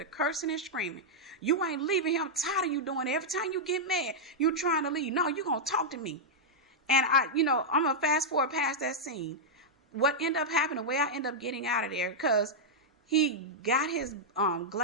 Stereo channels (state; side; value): normal; both; correlation -0.06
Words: cursing and screaming. You ain't leaving here. I'm tired of you doing it. Every time you get mad, you trying to leave. No, you going to talk to me. And I'm going to fast forward past that scene. What ended up happening, the way I ended up getting out of there, because he got his